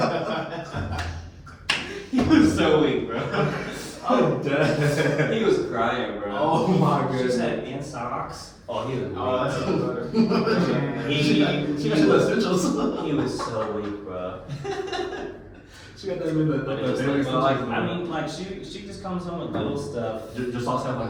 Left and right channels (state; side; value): identical; both; correlation 1.00